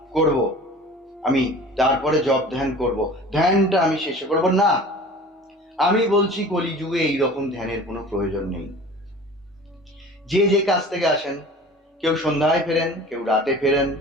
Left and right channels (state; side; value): normal; both; correlation 0.41